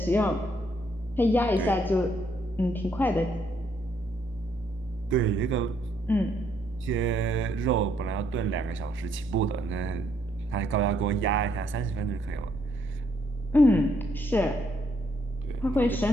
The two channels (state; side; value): normal; both; correlation 0.71